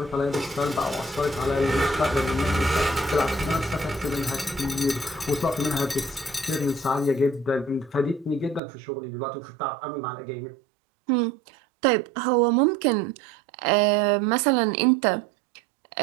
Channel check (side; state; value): left; drops out; at 8.6 s